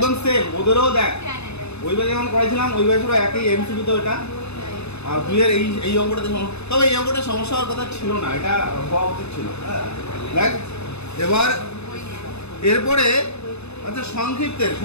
সেম ওদেরও। দেখ ওইভাবে যেমন করেছিলাম ওইভাবে পুরো একই এমসিকিউ তো এটা। আর তুই এর এই অঙ্কটাতে তবে এই অঙ্কটা সমস্যা হওয়ার কথা ছিল না, এটা হওয়া উচিত ছিল। দেখ এবার এরপরে আচ্ছা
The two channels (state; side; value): late; right; 0.80 ms